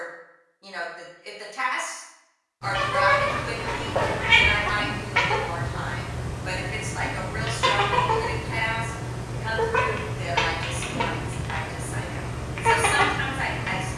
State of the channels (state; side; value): identical; both; correlation 1.00